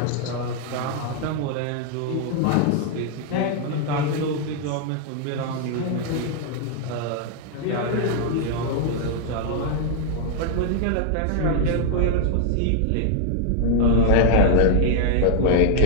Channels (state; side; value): different; both; correlation 0.00